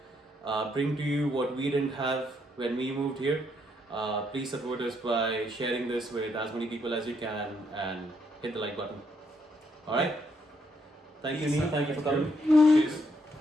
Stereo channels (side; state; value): both; normal; correlation 0.74